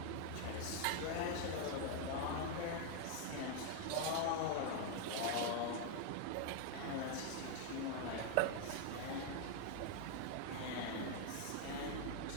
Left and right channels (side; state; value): both; different; correlation 0.00